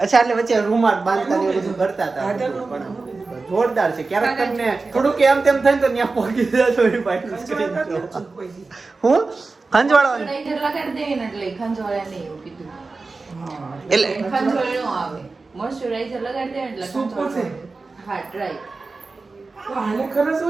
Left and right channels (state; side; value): quieter; left; 3.8 dB